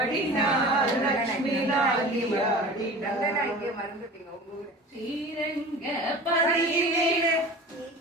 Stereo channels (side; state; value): both; normal; correlation 0.38